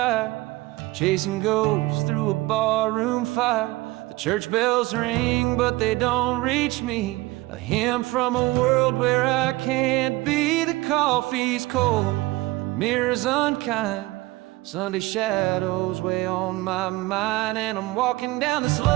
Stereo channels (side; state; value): left; quieter; 20.6 dB